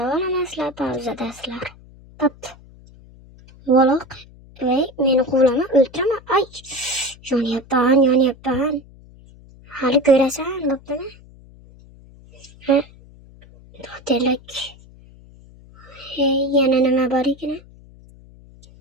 pauzadasizlar. Pop. Valoq. Meni quvlama, o'ltirama. Ay, yonyapman. Hali ko'rasan, bo'ptimi? To'telak. Yana nima bor ekan?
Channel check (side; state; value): left; noise; hum, 23 dB below the sound